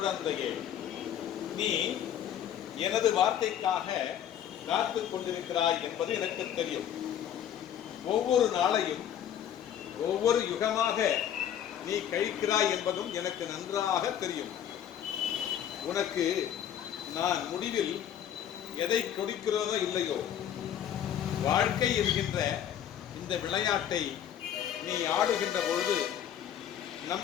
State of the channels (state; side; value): quieter; right; 10.0 dB